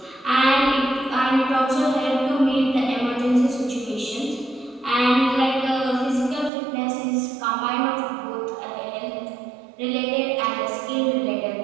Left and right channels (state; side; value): drops out; left; at 6.5 s